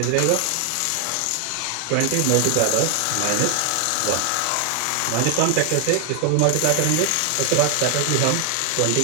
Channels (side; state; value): both; different; correlation 0.00